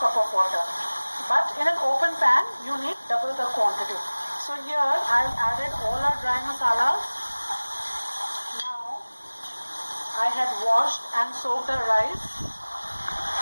cup of water. But in an open pan, you need double the quantity. So here I've added all our dry masalas. Now I had washed and soaked the rice.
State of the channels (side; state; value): both; inverted; correlation -1.00